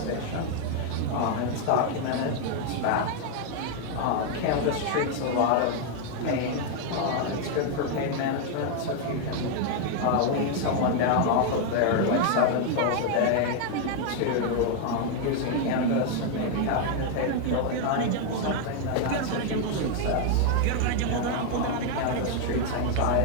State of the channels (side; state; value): both; different; correlation 0.00